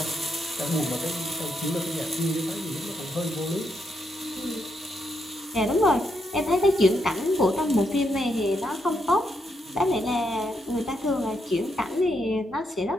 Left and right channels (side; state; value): both; normal; correlation 0.80